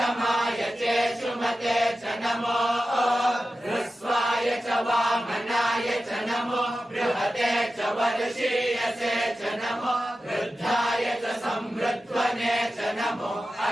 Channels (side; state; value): both; normal; correlation 0.93